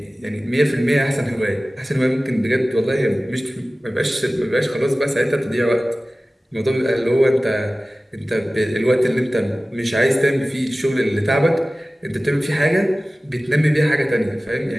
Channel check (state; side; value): normal; both; correlation 0.97